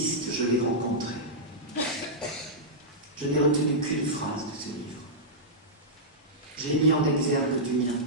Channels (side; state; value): both; normal; correlation -0.11